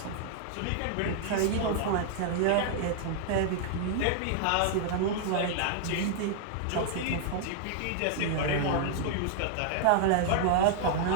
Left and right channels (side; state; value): both; different; correlation -0.01